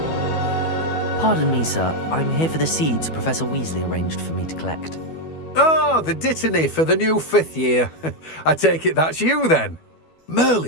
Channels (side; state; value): right; late; 12 ms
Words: Pardon me, sir. I'm here for the seeds Professor Weasley arranged for me to collect. Oh, the dittany for the new 5th year. I take it that's you then.